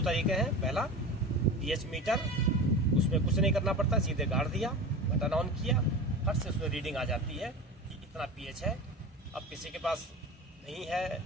तरीके हैं, पहला पीएच मीटर, उसमें कुछ नहीं करना पड़ता, सीधे गाड़ दिया, बटन ऑन किया, फट से उसमें रीडिंग आ जाती है कि इतना पीएच है। अब किसी के पास नहीं है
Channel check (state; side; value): normal; both; correlation 0.30